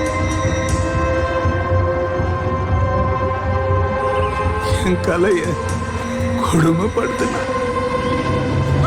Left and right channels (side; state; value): both; identical; correlation 1.00